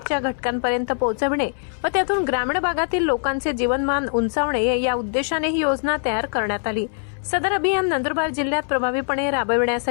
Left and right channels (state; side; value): silent; right; 64 dB below the other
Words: घटकांपर्यंत पोहोचविणे व त्यातून ग्रामीण भागातील लोकांचे जीवनमान उंचावणे या उद्देशाने ही योजना तयार करण्यात आली। सदर अभियान नंदुरबार जिल्ह्यात प्रभावीपणे